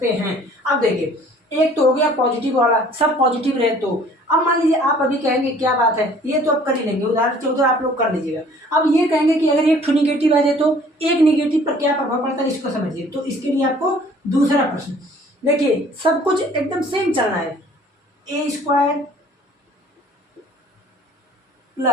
हैं। अब देखिए, एक तो हो गया पॉजिटिव वाला, सब पॉजिटिव रहे तो। अब मान लीजिए आप अभी कहेंगे क्या बात है, ये तो आप कर ही लेंगे, उदाहरण 14 आप लोग कर लीजिएगा। अब ये कहेंगे कि अगर एक निगेटिव आ जाए तो एक निगेटिव पर क्या प्रभाव पड़ता है इसको समझिए। तो इसके लिए आपको दूसरा प्रश्न देखिए, सब कुछ एकदम सेम चलना है। A square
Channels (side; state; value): both; normal; correlation 0.54